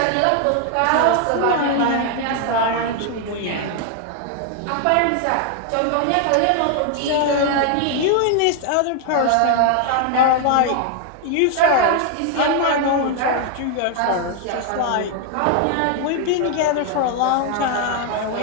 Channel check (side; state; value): both; different; correlation 0.00